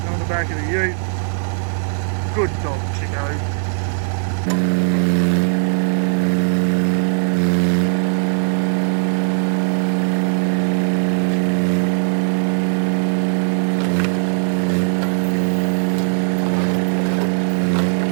on the back of the ute. Good dog, Chico.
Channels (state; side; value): silent; left; digital silence